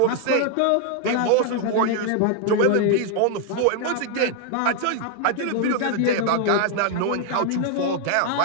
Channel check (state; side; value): different; both; correlation 0.00